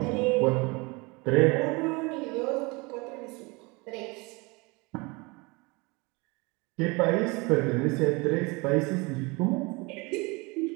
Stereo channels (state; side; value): quieter; left; 26.7 dB